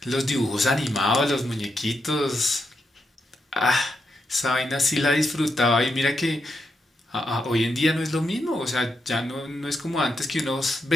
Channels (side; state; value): both; normal; correlation 0.83